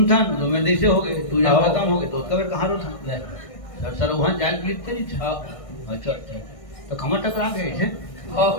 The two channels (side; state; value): right; late; 1.6 ms